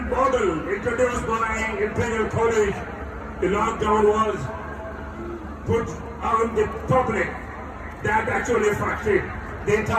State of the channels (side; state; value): both; identical; correlation 1.00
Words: model introduced by Imperial College, the lockdown was put on the public that actually affected the